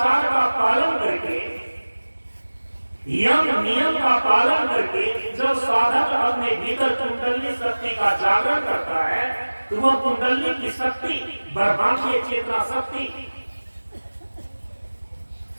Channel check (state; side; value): inverted; both; correlation -1.00